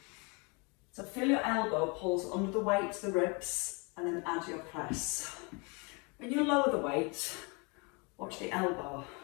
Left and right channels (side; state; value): right; quieter; 31.2 dB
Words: So feel your elbow pulls under the weight to the ribs, and then add your press. When you lower the weight, watch the elbow.